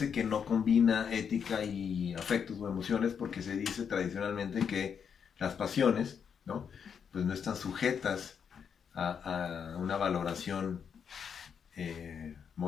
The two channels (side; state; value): right; quieter; 7.1 dB